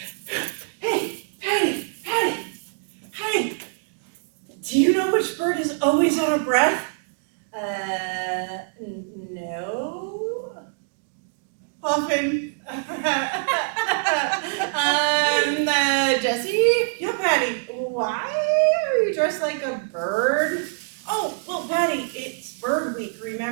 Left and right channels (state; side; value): silent; left; digital silence